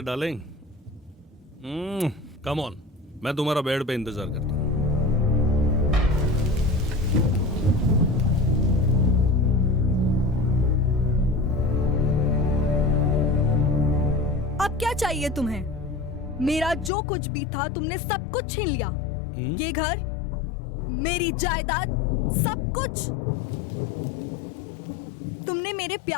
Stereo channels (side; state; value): right; drops out; at 16.9 s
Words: डार्लिंग। कम ऑन, मैं तुम्हारा बेड पे इंतजार करता हूं। अब क्या चाहिए तुम्हें? मेरा जो कुछ भी था तुमने सब कुछ छीन लिया। ये घर, मेरी जायदाद, सब कुछ। तुमने मेरे